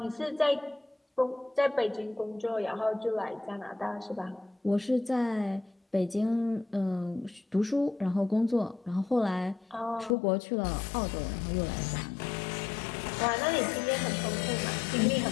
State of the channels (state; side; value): drops out; right; at 10.2 s